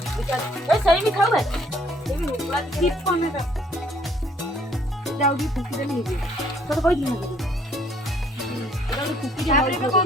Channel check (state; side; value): normal; both; correlation 0.63